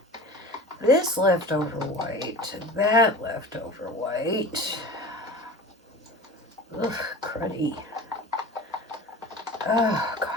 this leftover white to that leftover white, ugh, cruddy. Oh,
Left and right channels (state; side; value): normal; both; correlation 0.36